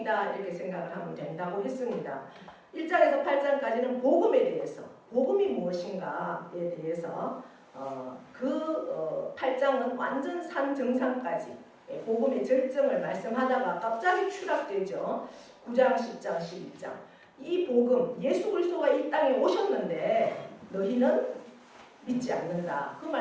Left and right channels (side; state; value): both; identical; correlation 1.00